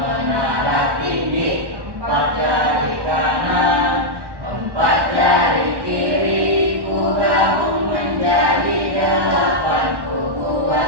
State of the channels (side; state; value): left; late; 1.1 ms